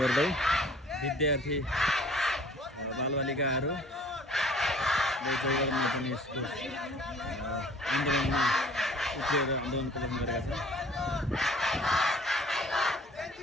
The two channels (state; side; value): normal; both; correlation 0.52